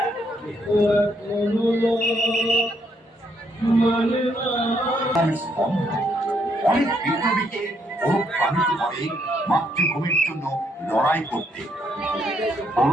অনেক বিপ্লবীকে অনুপ্রাণিত করে মাতৃভূমির জন্য লড়াই করতে।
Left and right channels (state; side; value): normal; both; correlation 0.73